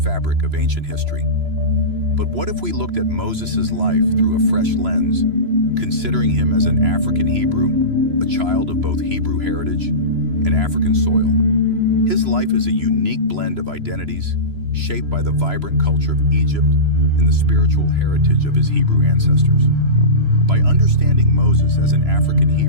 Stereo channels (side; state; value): left; late; 3.0 ms